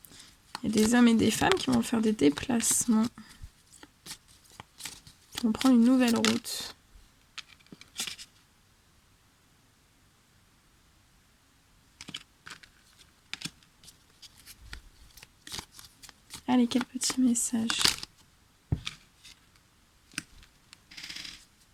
Il y a des hommes et des femmes qui vont faire des déplacements. Qui vont prendre une nouvelle route. Allez, quel petit message.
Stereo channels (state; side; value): identical; both; correlation 1.00